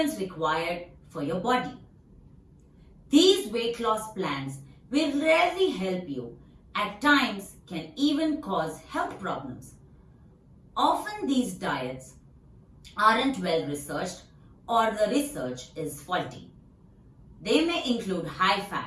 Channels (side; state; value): both; identical; correlation 1.00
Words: required for your body. These weight loss plans will rarely help you, at times can even cause health problems. Often these diets aren't well researched or the research is faulty. They may include high